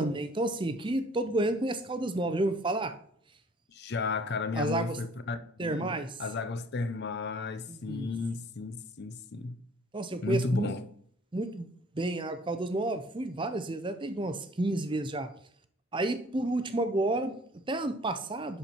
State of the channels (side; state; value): both; normal; correlation 0.54